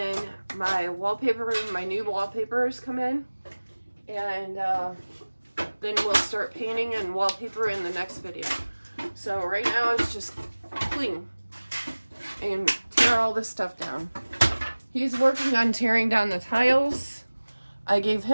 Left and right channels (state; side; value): inverted; both; correlation -1.00